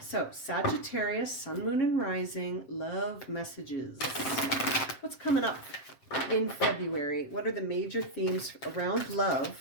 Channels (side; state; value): right; late; 7.6 ms